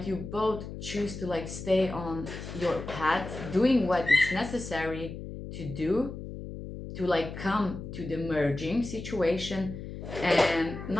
you both choose to like stay on your path, doing what is necessary to do to like come to the merging situation, and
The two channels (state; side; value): noise; left; hum, 9 dB below the sound